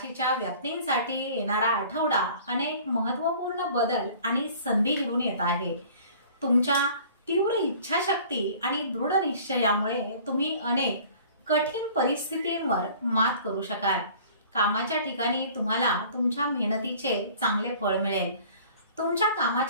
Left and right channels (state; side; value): inverted; both; correlation -0.48